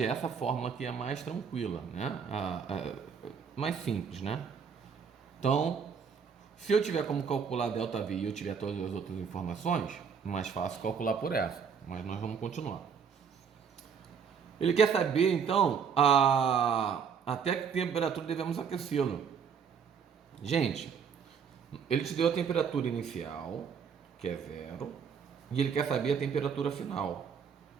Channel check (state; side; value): quieter; left; 6.7 dB